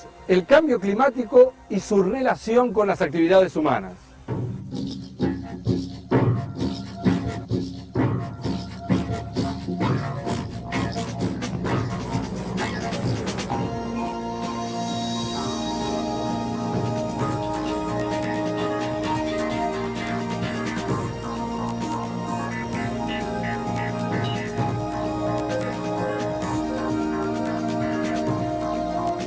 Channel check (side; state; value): both; identical; correlation 1.00